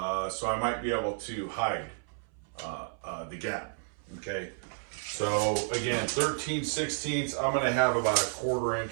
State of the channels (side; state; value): left; silent; 57 dB below the other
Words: I might be able to hide the gap. Okay, so again, 13/16. I'm going to have about 1/4